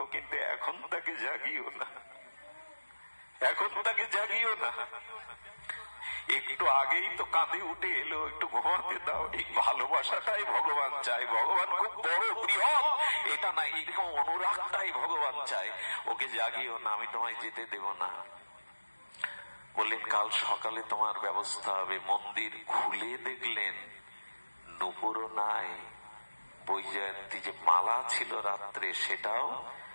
কিন্তু এখন তাকে জাগিও না, এখন তাকে জাগিও না। একটু আগেই তো কাঁধে উঠে এলো, একটু ঘুমাতে দাও। এই ভালোবাসাটাই ভগবান চায়। ভগবান খুব বড় বৃহৎ এটা না, এরকম অনুরাগটাই ভগবান চায়। ওকে জাগিও না, আমি তোমায় যেতে দেব না। বললেন কাল সকালে তোমার ব্যবস্থা হবে। মন্দির খুলে দেখলেন নুপুরও নাই, বৈজয়ন্তী যে মালা ছিল রাত্রে সেটাও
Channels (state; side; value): inverted; both; correlation -1.00